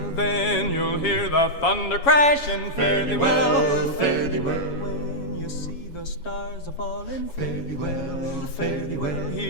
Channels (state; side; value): late; right; 7.1 ms